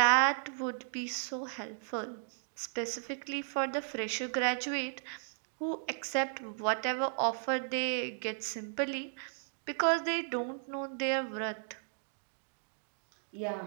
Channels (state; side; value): silent; left; digital silence